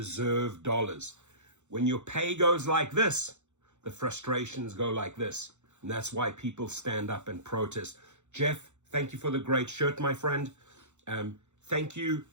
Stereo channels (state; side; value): late; left; 0.83 ms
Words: dollars. When your pay goes like this, the frustrations go like this. And that's why people stand up and protest. Jeff, thank you for the great shirt, my friend. Thank you,